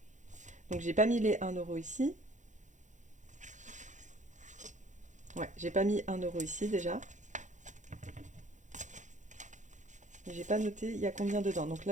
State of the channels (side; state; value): left; late; 0.35 ms